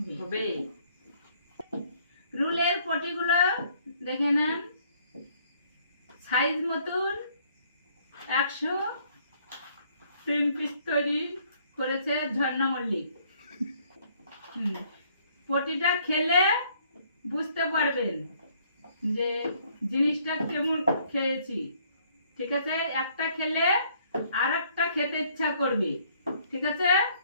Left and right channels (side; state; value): both; inverted; correlation -0.63